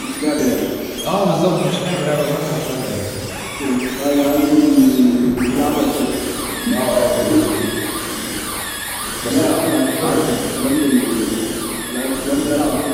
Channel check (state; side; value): identical; both; correlation 1.00